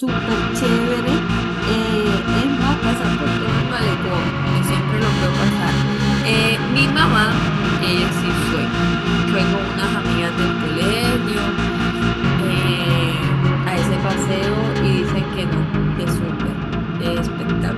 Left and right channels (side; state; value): both; identical; correlation 1.00